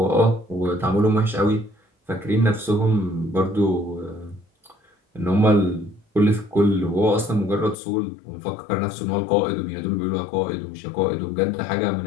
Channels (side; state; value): right; drops out; at 7.8 s